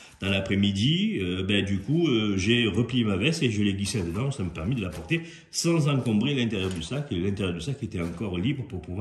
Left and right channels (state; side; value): identical; both; correlation 1.00